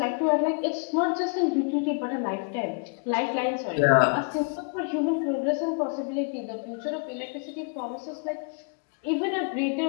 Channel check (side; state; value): right; quieter; 37.3 dB